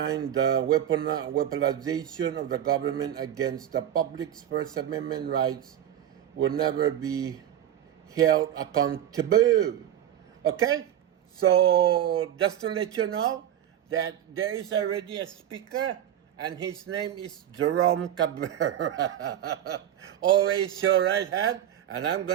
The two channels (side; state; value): left; quieter; 11.0 dB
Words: the weaponization of the government against the public's First Amendment rights will never be held accountable. Okay? So, just to let you know that there is already a speaker, and his name is Jerome Cabrera. Always your right hand, and I'm